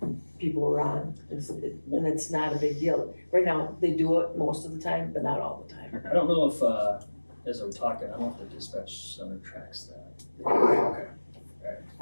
people were on. And it's not a big deal. Right now, they do it most of the time, but not all the time. I don't know if, as I'm talking, I don't know if the dispatch center tracks that. Okay.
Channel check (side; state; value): both; inverted; correlation -1.00